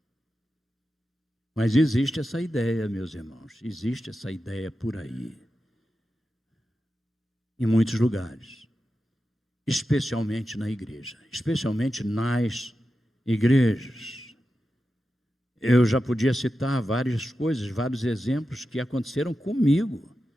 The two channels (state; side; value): normal; both; correlation 0.91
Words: Mas existe essa ideia, meus irmãos. Existe essa ideia por aí. Em muitos lugares. Especialmente na igreja. Especialmente nas igrejas. Eu já podia citar várias coisas, vários exemplos que aconteceram comigo,